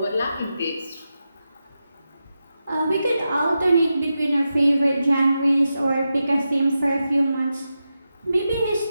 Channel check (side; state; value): both; inverted; correlation -0.90